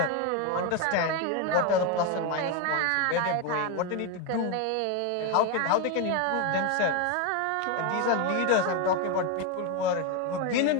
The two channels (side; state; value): both; different; correlation 0.02